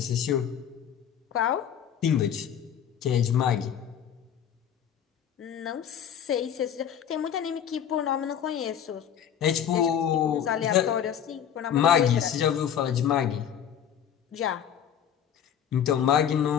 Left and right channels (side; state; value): right; quieter; 9.0 dB